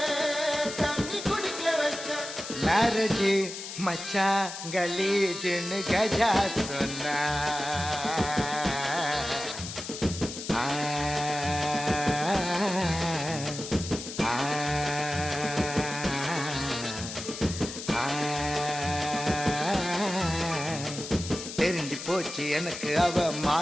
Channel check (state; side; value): noise; left; hiss, 9 dB below the sound